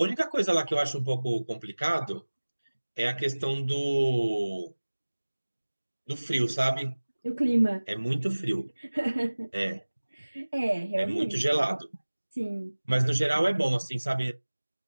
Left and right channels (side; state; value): both; inverted; correlation -1.00